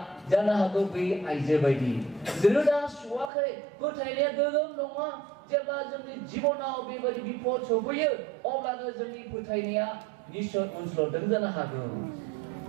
जानो हागौ बे आइजो बायदि रोदा सुवाखै, फोथायनाया गोगोम नङा। जेब्ला जोंनि जिबनाव बेबायदि बिपद सफैयो अब्लानो जोंनि फोथायनाया निश्चय उनस्लदों जानो हागौ।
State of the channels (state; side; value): drops out; left; at 3.3 s